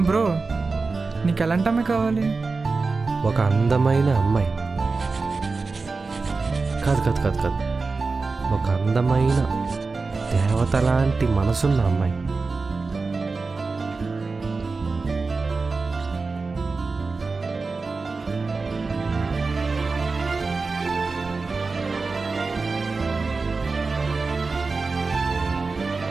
బ్రో, నీకు ఎలాంటి అమ్మాయి కావాలి? ఒక అందమైన అమ్మాయి. కాదు కాదు కాదు కాదు ఒక అందమైన దేవత లాంటి మనసున్న అమ్మాయి.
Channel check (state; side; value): quieter; left; 4.1 dB